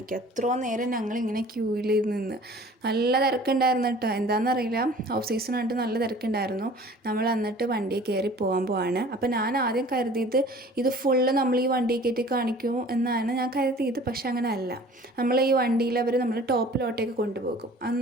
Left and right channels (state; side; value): normal; both; correlation 0.47